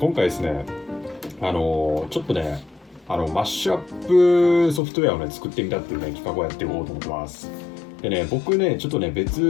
回ですね、ちょっとね、マッシュアップソフトウェアをね、作ってみたっていうね、企画をやっていこうと思ってます。でね、僕ね、ちょっとね、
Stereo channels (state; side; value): drops out; right; at 4.8 s